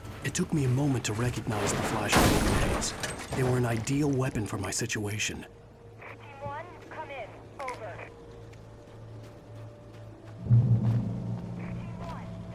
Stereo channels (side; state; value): both; identical; correlation 1.00